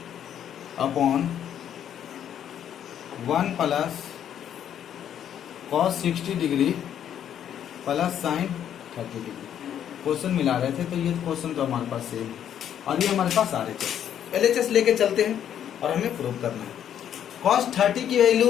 upon 1 plus cos 60 degree plus sin 30 degree. Question मिला रहे थे, तो ये क्वेश्चन तो हमारे पास सेम, और ये हमारे पास LHS लेके चलते हैं और हमें प्रूव करना है। cos 30 की वैल्यू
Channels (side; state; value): right; quieter; 9.8 dB